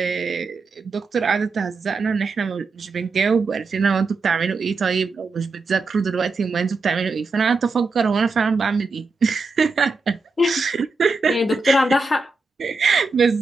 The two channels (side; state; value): left; quieter; 3.8 dB